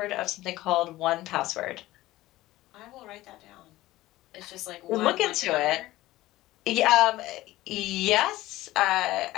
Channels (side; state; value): right; quieter; 16.9 dB